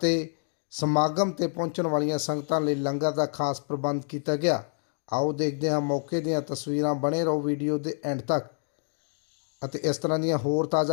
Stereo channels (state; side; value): silent; right; 60 dB below the other